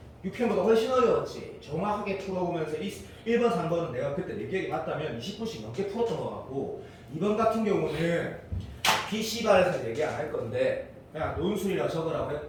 6편보다 훨씬 어려웠지. 정확하게 풀어보면서 1번, 3번은 내가 그때 내 기억이 맞다면 20분씩 넘게 풀었던 것 같고 2번 같은 경우는 PC반에서 얘기 안 할 건데 그냥 논술이라 적으라고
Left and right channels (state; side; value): identical; both; correlation 1.00